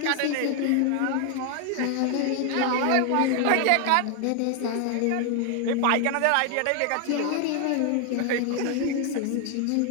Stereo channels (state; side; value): different; both; correlation 0.01